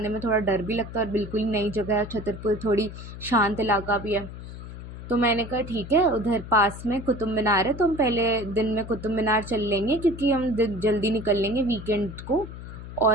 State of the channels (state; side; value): noise; left; hum, 12 dB below the sound